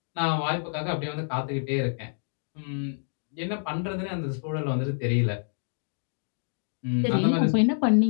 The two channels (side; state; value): right; silent; digital silence